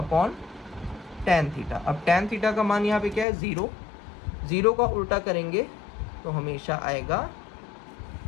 थीटा। अब tan थीटा का मान यहाँ पे क्या है, 0, 0 का उल्टा करेंगे तो हमेशा आएगा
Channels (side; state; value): right; drops out; at 3.2 s